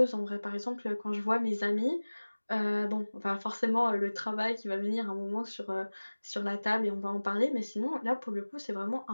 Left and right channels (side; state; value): both; inverted; correlation -1.00